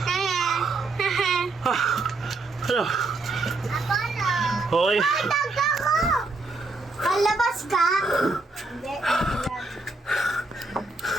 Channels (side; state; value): left; quieter; 3.3 dB